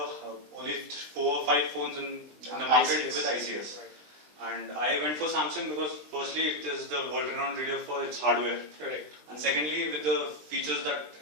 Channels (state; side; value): late; left; 20 ms